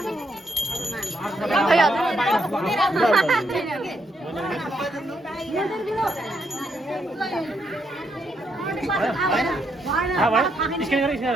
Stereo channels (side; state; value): both; normal; correlation 0.77